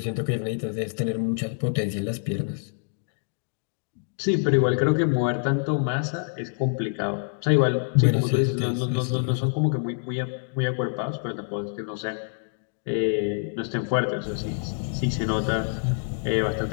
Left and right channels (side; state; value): right; silent; digital silence